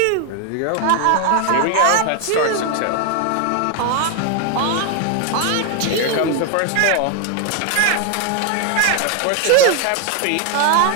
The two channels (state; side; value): different; both; correlation 0.01